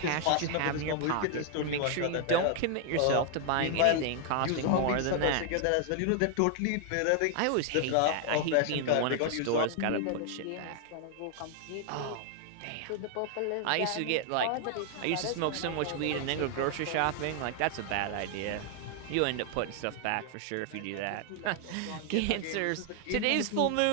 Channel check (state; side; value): different; both; correlation 0.00